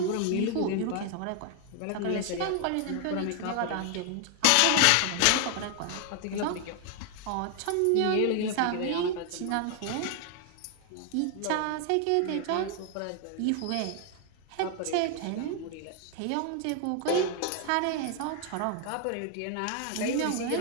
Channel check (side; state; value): both; different; correlation 0.00